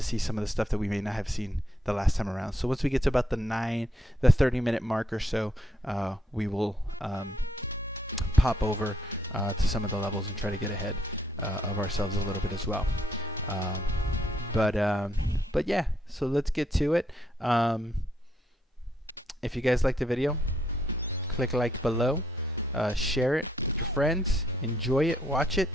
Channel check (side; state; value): both; normal; correlation 0.73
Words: see some of the stuff that we may not have seen the last time around. So once we get to about the 30-minute mark or so, we will pop over to some of the levels and try to get ahead of ourselves a little bit as well. But yeah, so let's get to it. If you guys liked the video, click like below, share it with your friends, enjoy it, watch it.